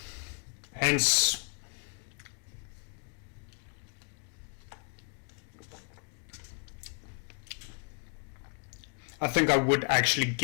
Hence, I think I would actually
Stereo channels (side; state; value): right; quieter; 39.9 dB